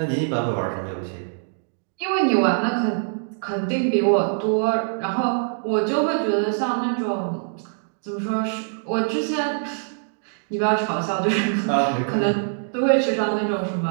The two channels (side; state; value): left; silent; digital silence